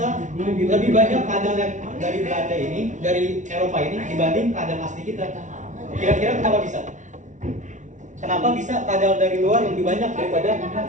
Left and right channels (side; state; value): left; late; 0.36 ms